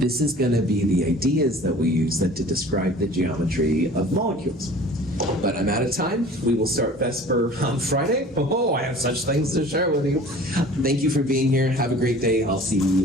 is going to be the ideas that we use then to describe the geometry of molecules. But I'm out of time. We will start VESPER on Friday. Oh, I have such things to share with you. Thank you for being here. Have a great day. I'll see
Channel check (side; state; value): both; normal; correlation 0.45